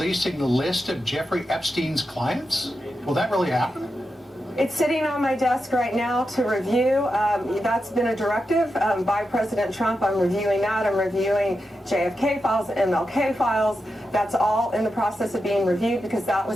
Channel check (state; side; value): normal; both; correlation 0.88